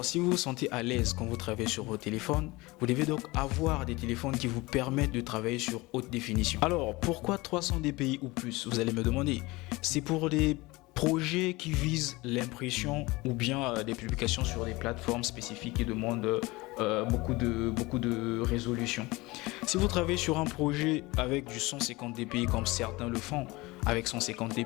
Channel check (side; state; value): right; quieter; 22.1 dB